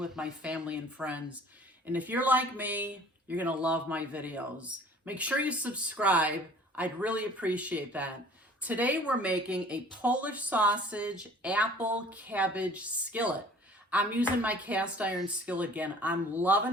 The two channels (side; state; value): both; normal; correlation 0.50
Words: my family and friends. And if you're like me, you're gonna love my videos. Make sure you subscribe. I'd really appreciate that. Today we're making a Polish sausage apple cabbage skillet. I'm using my cast iron skillet again. I'm